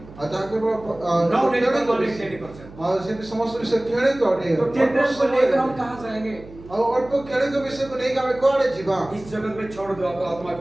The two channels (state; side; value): noise; right; hum, 19 dB below the sound